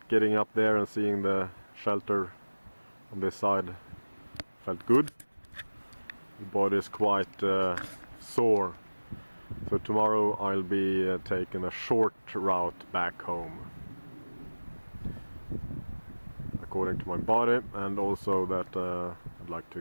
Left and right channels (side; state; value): both; inverted; correlation -1.00